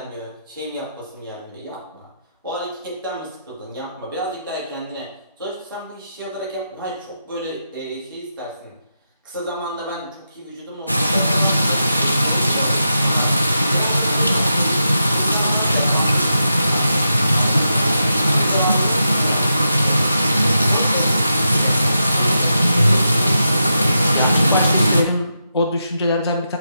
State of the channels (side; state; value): both; inverted; correlation -0.86